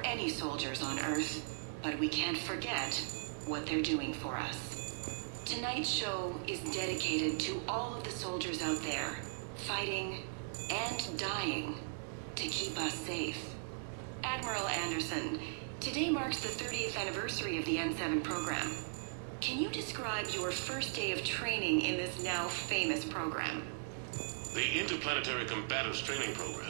any soldiers on Earth, but we can't forget what they're doing for us. Tonight's show is dedicated to all of the soldiers out there, fighting and dying to keep us safe. Admiral Anderson, today marks the 30th anniversary of the N7 program. Can you describe your first day of training in this now famous program? The Interplanetary Combatives Training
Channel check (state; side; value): silent; left; digital silence